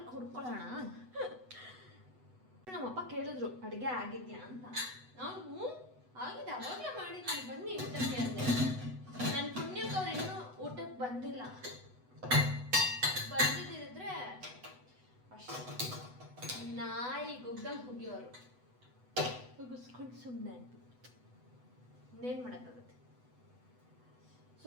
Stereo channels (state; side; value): late; left; 8.0 ms